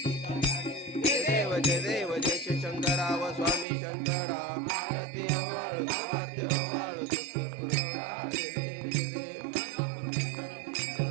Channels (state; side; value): drops out; left; at 3.7 s